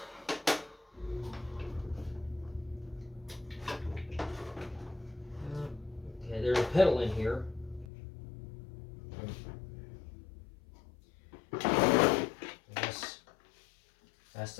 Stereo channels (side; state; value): right; drops out; at 7.9 s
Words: Okay, there's a pedal in here. That's